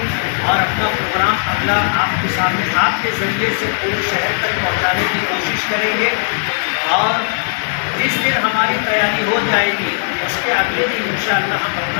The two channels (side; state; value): right; silent; digital silence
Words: और अपना प्रोग्राम अगला आपके सामने आपके ज़रिए से पूरे शहर तक पहुंचाने की कोशिश करेंगे और जिस दिन हमारी तैयारी हो जाएगी उसके अगले दिन इंशाअल्लाह हम